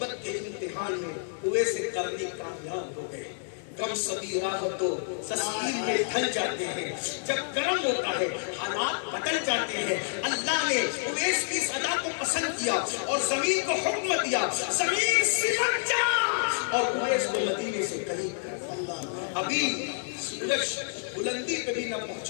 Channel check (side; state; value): right; silent; digital silence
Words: کے امتحان میں اویس کرنی کامیاب ہو گئے. کم سبھی راہ تو تسلیم میں ڈھل جاتے ہیں. جب کرم ہوتا ہے حالات بدل جاتے ہیں. اللہ نے اویس کی صدا کو پسند کیا اور زمین کو حکم دیا زمین سمٹ جا، اور اویس کو مدینے سے قریب کر. ابھی سورج بلندی پہ بھی نہ